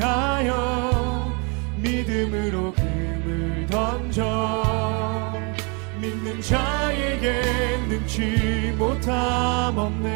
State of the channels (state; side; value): quieter; left; 33.3 dB